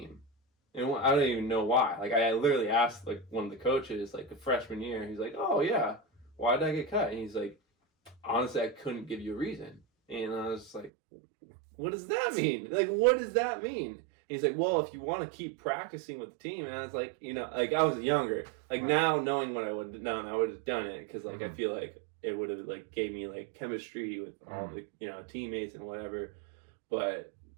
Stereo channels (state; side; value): drops out; left; at 10.9 s